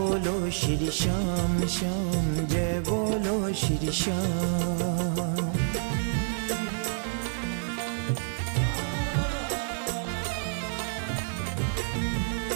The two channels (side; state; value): left; silent; 58 dB below the other